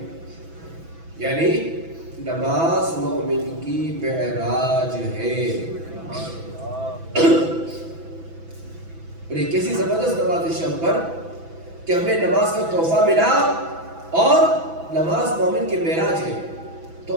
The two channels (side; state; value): left; late; 6.1 ms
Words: یعنی نماز مومن کی معراج ہے۔ اور یہ کیسی زبردست نماز شب پر کہ ہمیں نماز کا تحفہ ملا اور نماز مومن کی معراج ہے۔